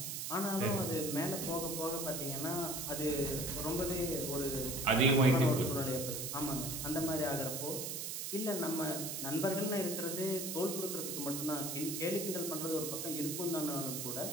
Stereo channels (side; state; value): right; noise; hiss, 4 dB below the sound